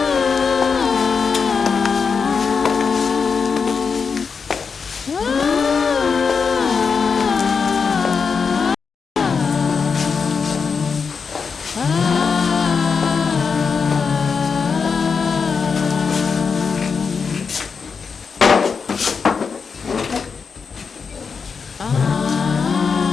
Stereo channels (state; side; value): quieter; right; 5.5 dB